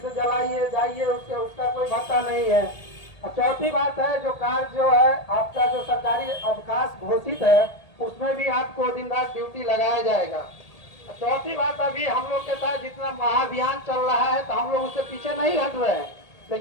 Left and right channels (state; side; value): late; right; 1.8 ms